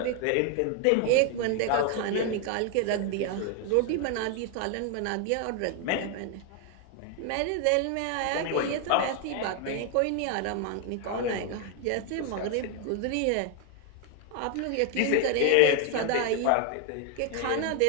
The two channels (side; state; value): both; different; correlation 0.01